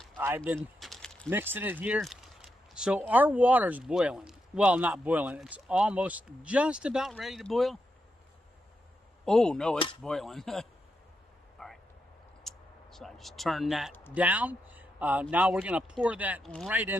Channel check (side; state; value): both; normal; correlation 0.84